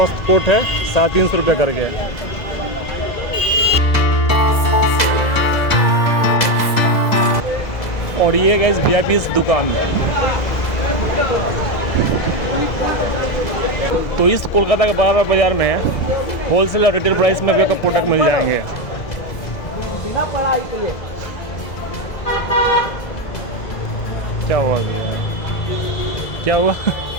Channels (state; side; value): late; right; 2.0 ms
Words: कोट है 350 रुपये करके। और ये गाइस VIP इस दुकान है। तो इस कोलकाता के बड़ा बाजार में होलसेल और रिटेल प्राइस में भी आपको प्रोडक्ट मिल जाएंगे। क्या हुआ क्या हुआ